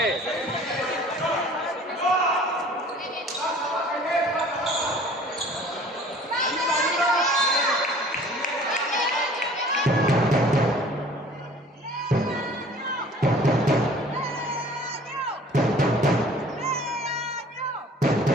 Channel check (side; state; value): both; normal; correlation 0.50